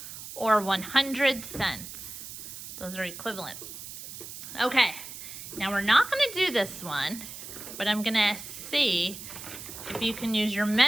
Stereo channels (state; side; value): noise; right; hiss, 11 dB below the sound